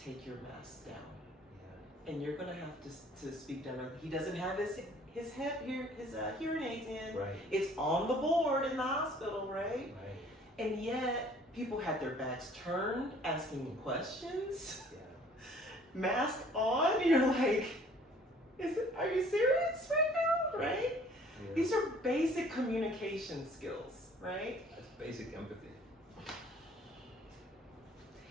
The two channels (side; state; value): both; normal; correlation 0.55